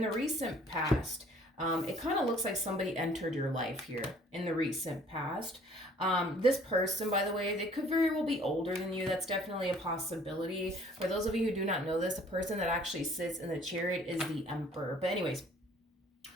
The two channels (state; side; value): normal; both; correlation 0.55